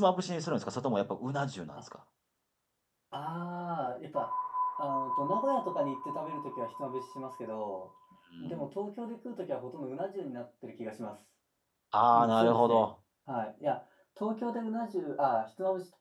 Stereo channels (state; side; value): identical; both; correlation 1.00